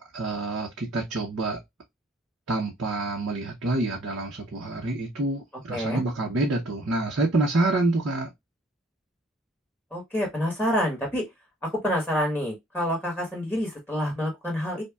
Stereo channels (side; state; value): both; normal; correlation 0.58